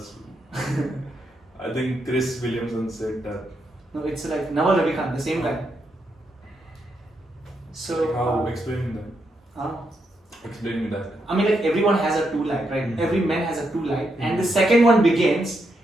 I think Chris Williamson said that. No, it's like Naval Ravikant, the same guy. So. How? Explain that. Explain me that. I mean, like everyone has a true light, right? Every man has a true light, and the second one begins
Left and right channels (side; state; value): both; normal; correlation 0.81